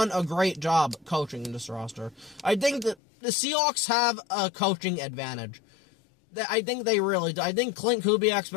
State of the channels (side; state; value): right; drops out; at 3.0 s